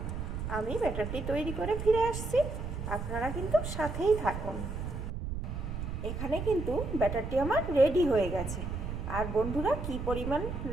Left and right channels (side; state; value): right; noise; rumble, 5 dB below the sound